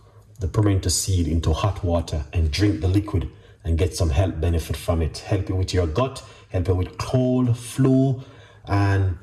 the pimento seed into hot water and drink the liquid and get some health benefit from it. Help you with your gut, help you with cold, flu, and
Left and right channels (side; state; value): both; identical; correlation 1.00